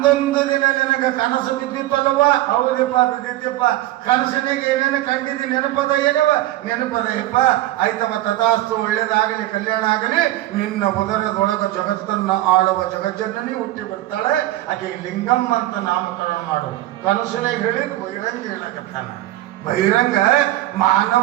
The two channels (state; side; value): quieter; left; 15.7 dB